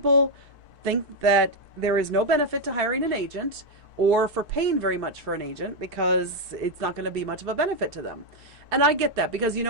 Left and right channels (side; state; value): both; normal; correlation 0.01